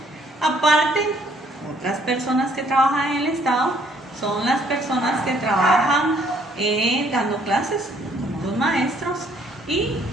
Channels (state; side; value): normal; both; correlation 0.64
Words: Aparte, otras personas que trabajan en el Estado son las personas que trabajan dando clases, como los maestros, y